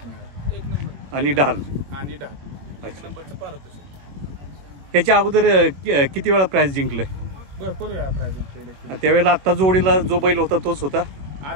मिळाले, 1 नंबर आणि ढाल. आणि 10 अच्छा. त्याच्या अगोदर किती वेळा प्राइस जिंकलंय? भरपूर वेळा प्राइज जिंकलेले. त्यावेळेला आता जोडीला जो बैल होता तोच होता?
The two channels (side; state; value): left; late; 21 ms